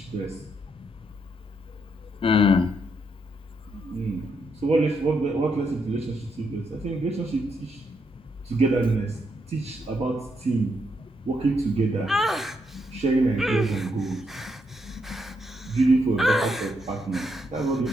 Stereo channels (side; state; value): both; normal; correlation 0.78